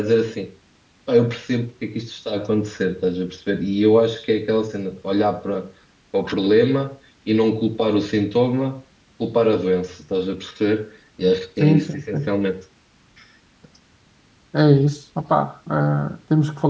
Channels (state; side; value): identical; both; correlation 1.00